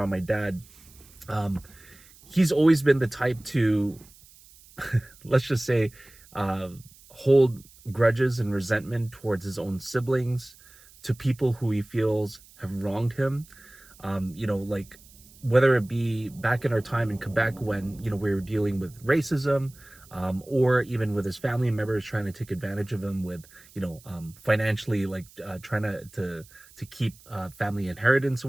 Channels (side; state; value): right; noise; hiss, 24 dB below the sound